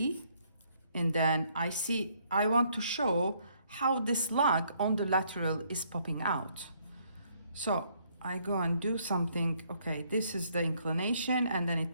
and then I want to show how this lug on the lateral is popping out. So I go and do something, okay, this is the inclination, and then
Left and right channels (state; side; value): inverted; both; correlation -0.68